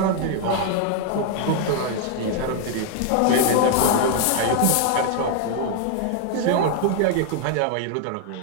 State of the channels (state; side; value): different; both; correlation 0.00